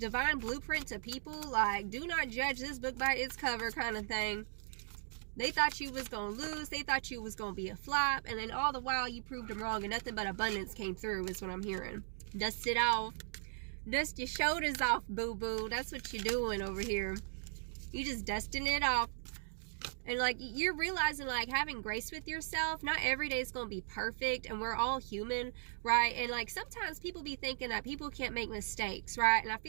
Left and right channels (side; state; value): left; silent; digital silence